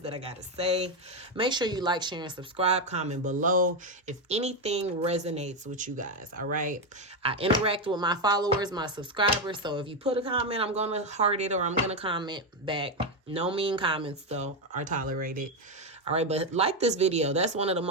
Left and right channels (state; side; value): normal; both; correlation 0.07